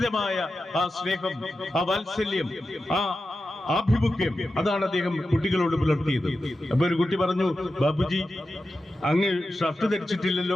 ആ സ്നേഹം, ആ വാത്സല്യം, ആ ആഭിമുഖ്യം, അതാണ് അദ്ദേഹം കുട്ടികളോട് പുലർത്തിയത്. അപ്പൊ ഒരു കുട്ടി പറഞ്ഞു, ബാപ്പുജി, അങ്ങ് ഷർട്ട്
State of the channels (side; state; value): both; normal; correlation 0.91